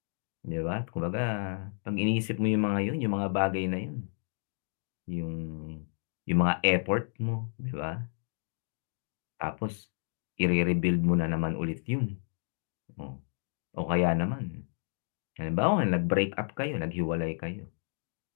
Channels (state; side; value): silent; right; 57 dB below the other